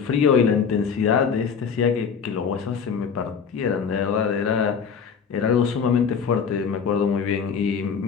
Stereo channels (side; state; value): right; quieter; 6.5 dB